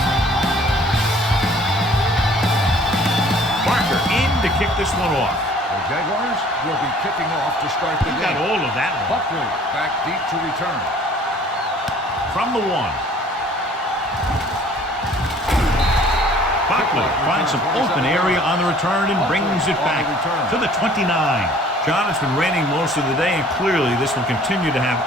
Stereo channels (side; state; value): both; normal; correlation 0.54